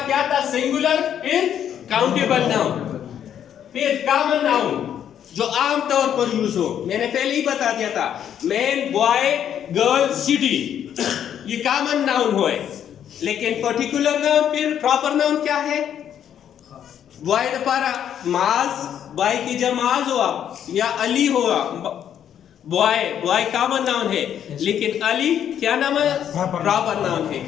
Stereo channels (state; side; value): quieter; right; 9.5 dB